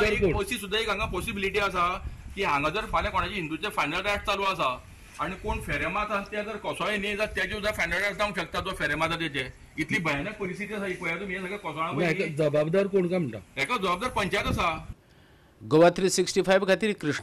सुद्दां एक हांगा पॉसिबिलिटी आसा की हांगा जर फाल्यां कोणाचे हिंदूचे फायनल रायट चालू आसा आणि कोण फेरे मारतात ते जर कोसळे न्ही जाल्यार तेजे सुद्दां फायनल रायट जावंक शकता जो फेरे मारता तेजे. इतली भयानक परिस्थिती आसा ही पळया तुमी. हे सगळे कोसळा जबाबदार कोण काय म्हणटा? हेका जबाबदार पंचायत आसा. गोवा 365 खातीर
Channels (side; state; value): both; identical; correlation 1.00